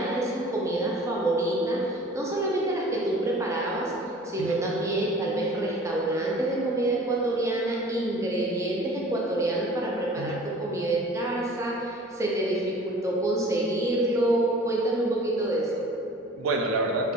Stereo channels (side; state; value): both; normal; correlation 0.45